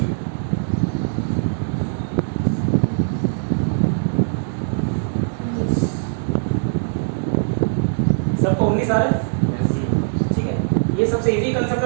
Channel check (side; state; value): left; silent; 65 dB below the other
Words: सबको 19 आ रहा है, ठीक है। ये सबसे इजी कंसेप्ट